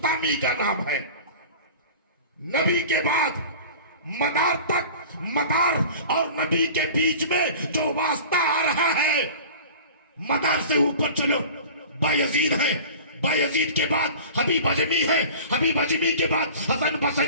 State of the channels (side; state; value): both; inverted; correlation -0.38